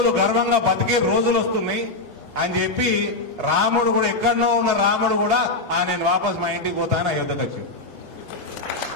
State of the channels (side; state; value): right; quieter; 3.1 dB